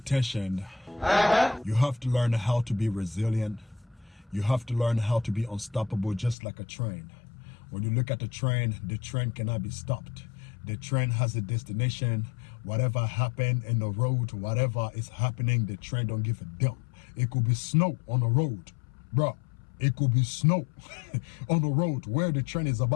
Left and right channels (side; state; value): right; drops out; at 6.4 s